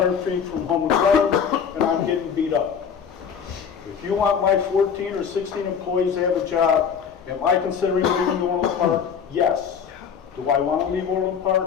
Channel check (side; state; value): right; quieter; 7.0 dB